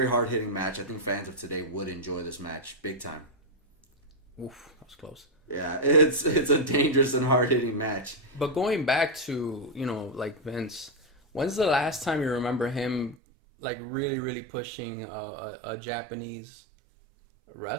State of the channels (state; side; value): drops out; left; at 13.2 s